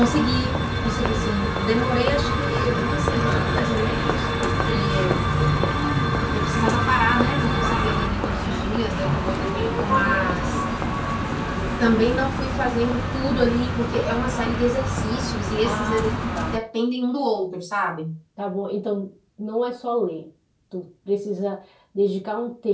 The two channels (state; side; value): identical; both; correlation 1.00